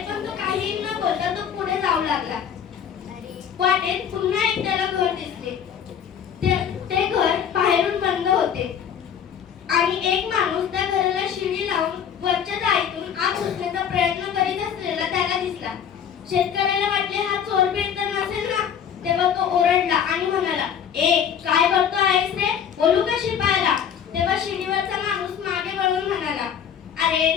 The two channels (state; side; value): quieter; right; 8.3 dB